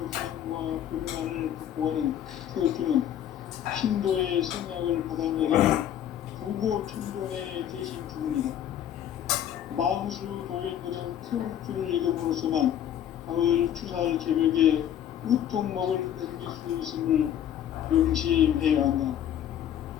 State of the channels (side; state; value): right; quieter; 10.4 dB